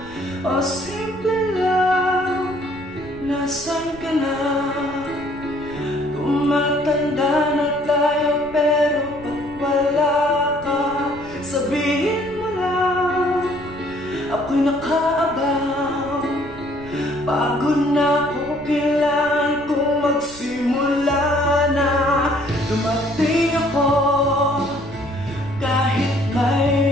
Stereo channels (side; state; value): right; noise; rumble, 18 dB below the sound